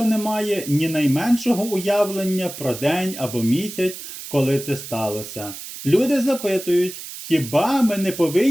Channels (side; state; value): right; noise; hiss, 11 dB below the sound